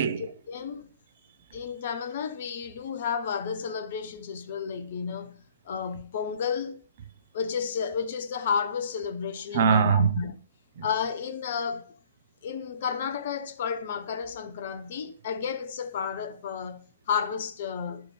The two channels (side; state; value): both; inverted; correlation -0.55